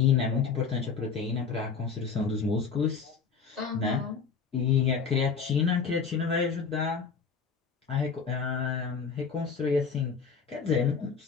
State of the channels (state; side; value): quieter; right; 5.7 dB